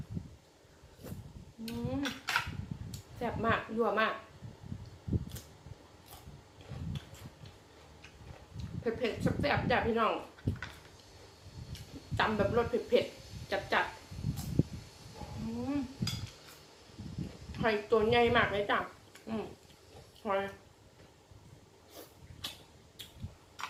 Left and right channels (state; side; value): identical; both; correlation 1.00